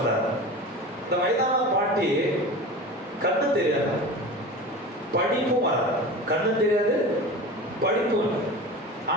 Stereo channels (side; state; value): both; normal; correlation 0.32